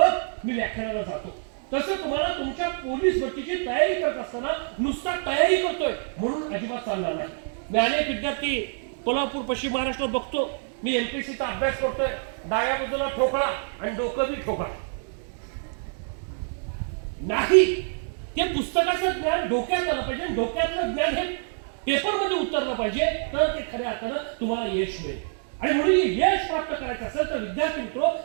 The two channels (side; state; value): left; silent; 61 dB below the other